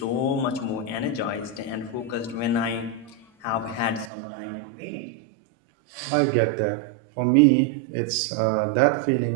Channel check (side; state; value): left; drops out; at 4.1 s